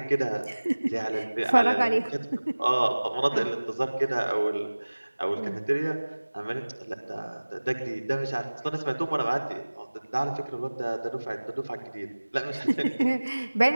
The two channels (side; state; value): both; inverted; correlation -1.00